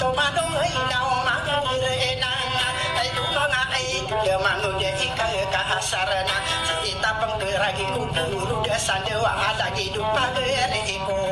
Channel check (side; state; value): both; identical; correlation 1.00